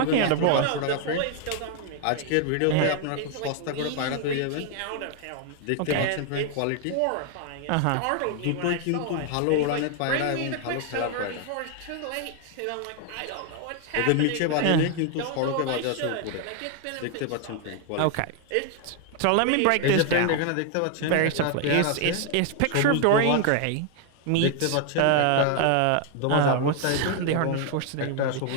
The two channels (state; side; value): different; both; correlation 0.00